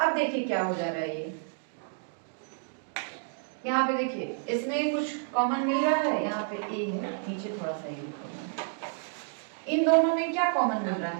देखिए क्या हो जा रहा है, ये यहाँ पे देखिए इसमें कुछ कॉमन मिल रहा है, यहाँ पे ए है, नीचे थोड़ा सा ए, इन दोनों में क्या कॉमन मिल रहा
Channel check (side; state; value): left; silent; 58 dB below the other